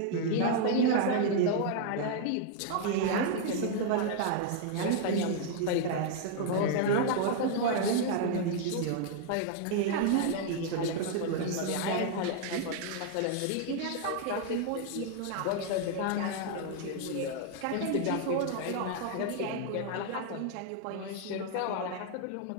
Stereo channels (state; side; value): different; both; correlation 0.00